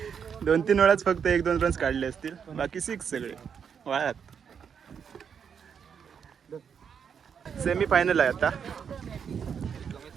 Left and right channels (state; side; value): quieter; left; 7.2 dB